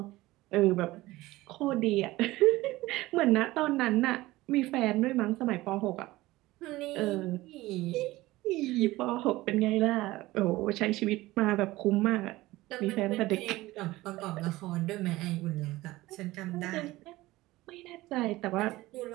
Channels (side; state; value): left; quieter; 18.4 dB